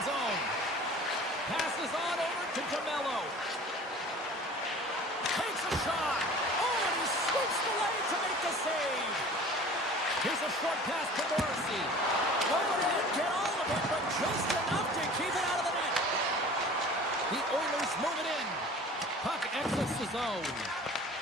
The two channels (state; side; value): normal; both; correlation 0.43